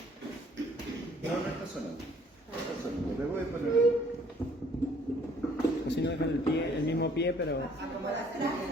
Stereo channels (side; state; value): both; normal; correlation 0.59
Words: No está sonando. No está sonando. Le voy a poner. Así no dejan el mismo pie, pero... A ver,